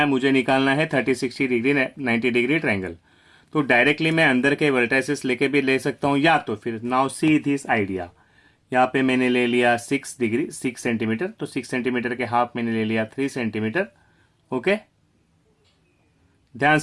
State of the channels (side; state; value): both; identical; correlation 1.00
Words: मुझे निकालना है 30, 60 डिग्री 90 डिग्री ट्रायंगल। तो डायरेक्टली मैं अंदर के वर्टाइसेस लेके भी ले सकता हूँ, या तो फिर नाउ सी दिस आइडिया। यहाँ पे मैंने ले लिया 6 डिग्री 6 सेंटीमीटर, तो 6 सेंटीमीटर के हाफ मैंने ले लिया 3 सेंटीमीटर। ओके, ध्यान